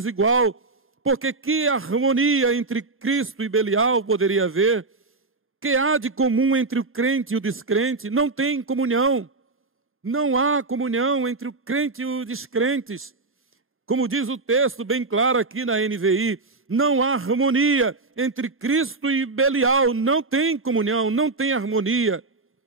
porque que harmonia entre Cristo e Belial poderia haver? Que há de comum entre o crente e o descrente? Não tem comunhão. Não há comunhão entre o crente e os descrentes. Como diz o texto bem claro aqui na NVI, não há harmonia entre Cristo e Belial. Não tem comunhão, não tem harmonia.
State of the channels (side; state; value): left; quieter; 3.6 dB